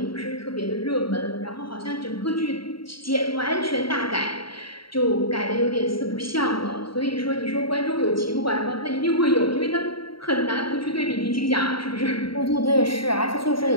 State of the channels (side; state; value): right; late; 0.74 ms